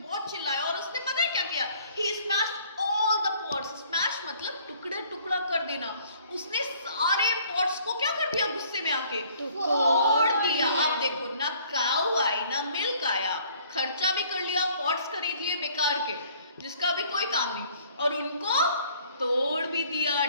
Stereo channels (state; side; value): inverted; both; correlation -0.58